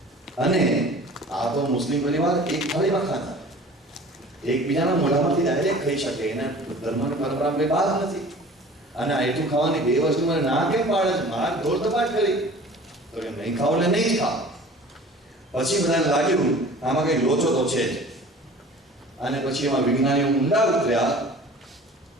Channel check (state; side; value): normal; both; correlation 0.44